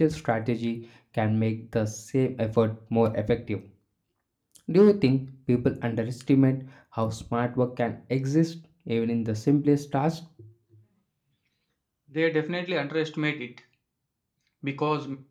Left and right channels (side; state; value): both; identical; correlation 1.00